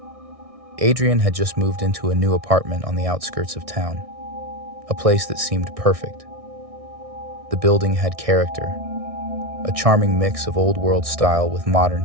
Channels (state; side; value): late; left; 1.6 ms